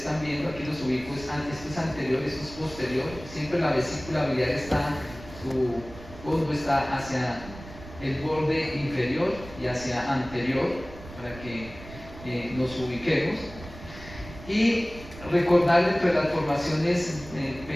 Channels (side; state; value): right; noise; rumble, 16 dB below the sound